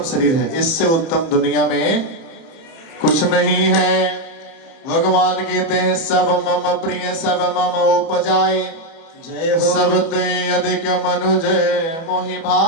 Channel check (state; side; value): late; right; 31 ms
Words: शरीर है, इससे उत्तम दुनिया में कुछ नहीं है। भगवान कहते हैं सब मम प्रिय सब मम उपजाए, जय हो। सब ते अधिक मनुज मोहि